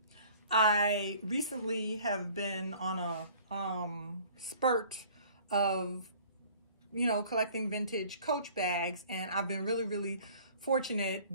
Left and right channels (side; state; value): both; inverted; correlation -0.51